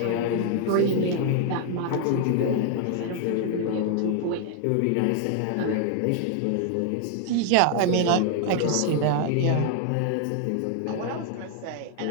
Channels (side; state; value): both; different; correlation 0.00